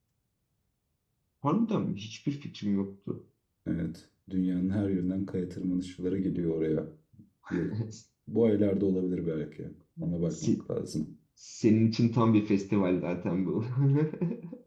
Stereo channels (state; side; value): identical; both; correlation 1.00